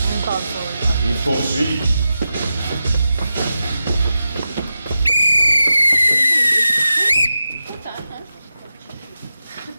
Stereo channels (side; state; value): both; inverted; correlation -0.91